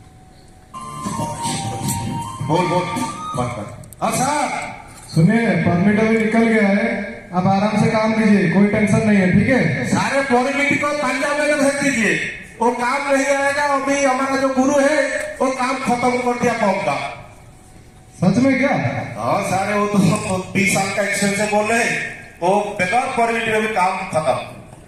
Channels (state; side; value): identical; both; correlation 1.00